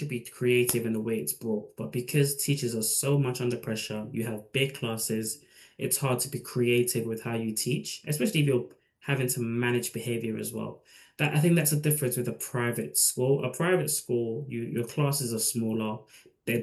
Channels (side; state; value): both; identical; correlation 1.00